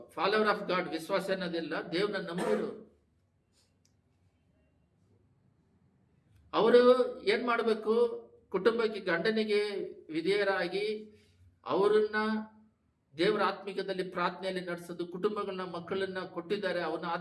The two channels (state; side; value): identical; both; correlation 1.00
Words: ಫಾಲೋವರ್ ಆಫ್ ಗಾಡ್, ವಿಶ್ವಾಸ ಅನ್ನೋದಿಲ್ಲ, ದೇವ್ರನ್ನ ನಂಬಿರು. ಅವರು ಏನ್ ಮಾಡಬೇಕು? ಕುಟುಂಬಕ್ಕೆ, ಗಂಡನಿಗೆ ವಿಧೇಯರಾಗಿ ಅವರನ್ನ ದೇವರ ಆತ್ಮಿಕದಲ್ಲಿ ಪ್ರಾರ್ಥನೆಯಲ್ಲಿ ನಡೆಸೋದು, ಕುಟುಂಬಗಳನ್ನ, ಮಕ್ಕಳನ್ನ ಕೊಟ್ಟಿದ್ದಾರೆ ಅವನ್ನ